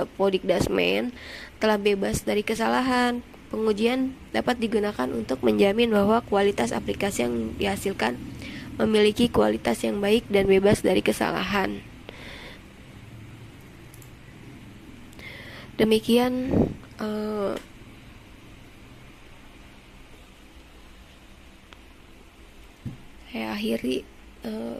telah bebas dari kesalahan. Pengujian dapat digunakan untuk menjamin bahwa kualitas aplikasi yang dihasilkan memiliki kualitas yang baik dan bebas dari kesalahan. Demikian saya akhiri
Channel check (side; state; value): both; identical; correlation 1.00